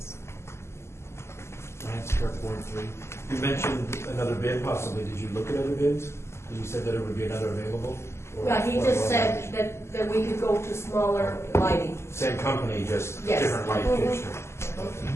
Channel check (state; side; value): late; right; 0.13 ms